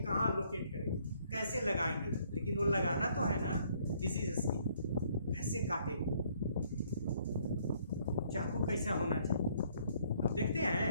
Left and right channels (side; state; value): both; inverted; correlation -0.65